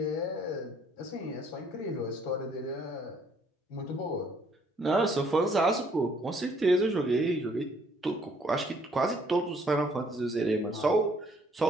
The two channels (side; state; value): both; normal; correlation 0.64